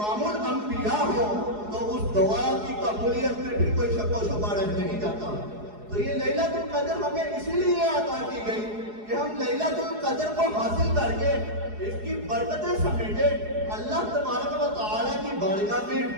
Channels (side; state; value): left; late; 4.8 ms